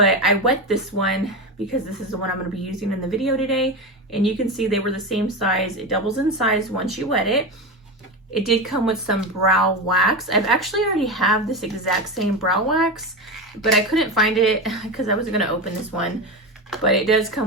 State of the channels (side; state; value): both; normal; correlation 0.20